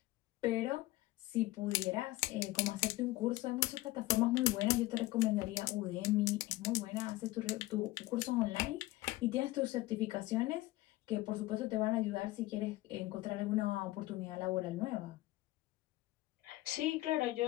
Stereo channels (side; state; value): right; quieter; 18.2 dB